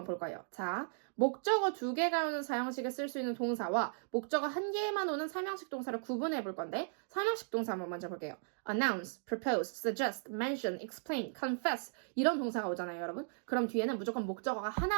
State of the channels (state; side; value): silent; left; digital silence